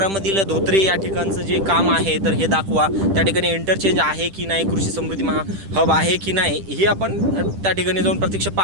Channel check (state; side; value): late; left; 10 ms